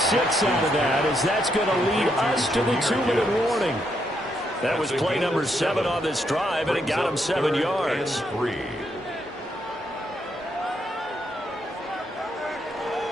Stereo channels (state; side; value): normal; both; correlation 0.77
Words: out of that, as that's going to lead us to the 2-minute warning. That was play number 7 on this drive, and it got him 7 yards.